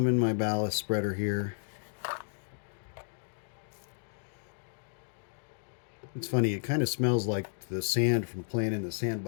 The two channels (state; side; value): silent; right; digital silence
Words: in my ballast spreader here. It's funny, it kind of smells like the sand from playing in the